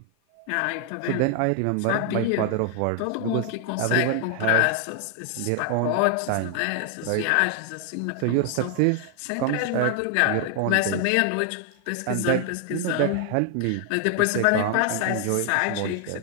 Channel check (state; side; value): different; both; correlation 0.00